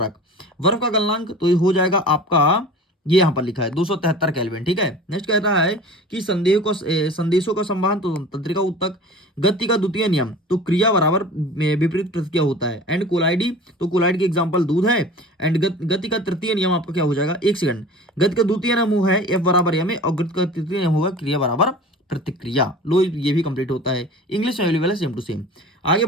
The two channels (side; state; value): both; normal; correlation 0.39